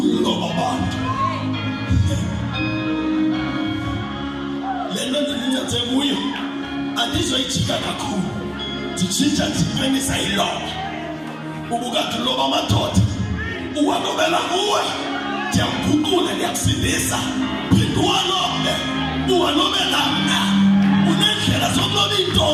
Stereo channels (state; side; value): identical; both; correlation 1.00